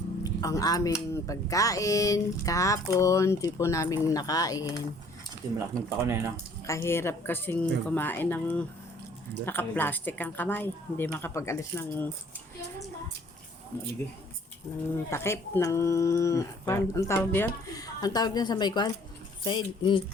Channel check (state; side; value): normal; both; correlation 0.57